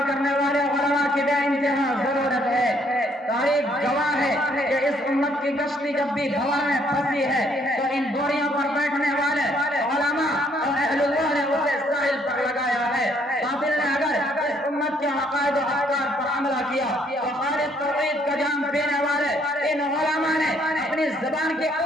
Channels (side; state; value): both; normal; correlation 0.67